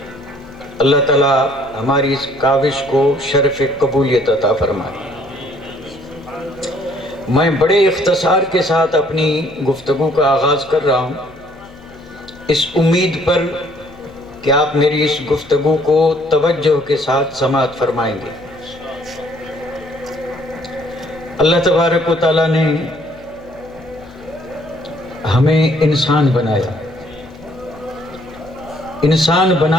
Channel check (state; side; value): noise; left; hum, 26 dB below the sound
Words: اللہ تعالیٰ ہماری اس کاوش کو شرف قبولیت عطا فرمائے۔ میں بڑے اختصار کے ساتھ اپنی گفتگو کا آغاز کر رہا ہوں، اس امید پر کہ آپ میری اس گفتگو کو توجہ کے ساتھ سماعت فرمائیں گے۔ اللہ تبارک و تعالیٰ نے ہمیں انسان بنایا، انسان